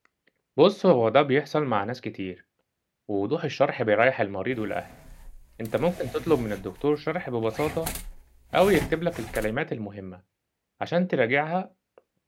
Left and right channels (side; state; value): both; identical; correlation 1.00